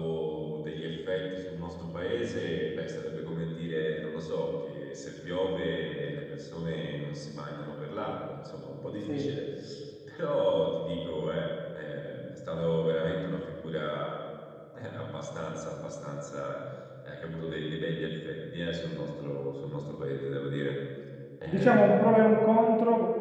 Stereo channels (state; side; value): identical; both; correlation 1.00